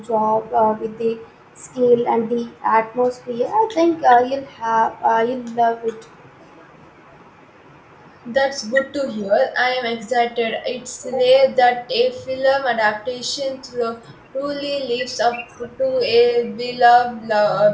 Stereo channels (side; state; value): both; identical; correlation 1.00